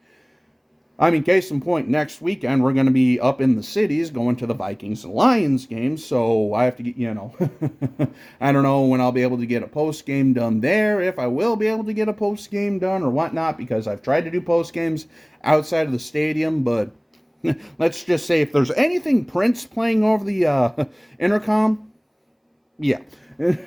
I mean, case in point, next weekend we're going to be up in the cities going to the Vikings and Lions game, so I have to get, I don't know when I'll be able to get a post-game done there, if I will be able to get a post-game done or whatnot, because I've tried to do post-games outside of the stadium, but let's just say if there's anything Prince playing over the intercom, yeah.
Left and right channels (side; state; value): both; identical; correlation 1.00